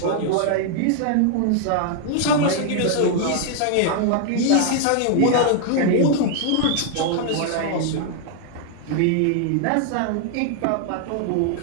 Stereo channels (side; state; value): both; different; correlation 0.00